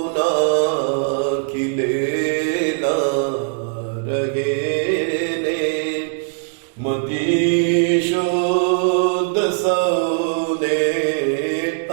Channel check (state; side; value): silent; left; digital silence